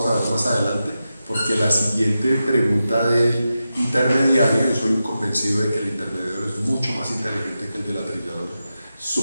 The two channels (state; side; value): inverted; both; correlation -0.91